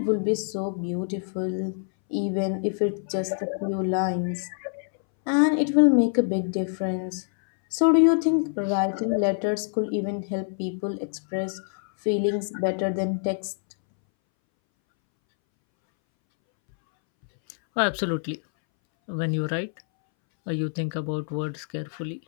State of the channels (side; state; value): right; silent; 61 dB below the other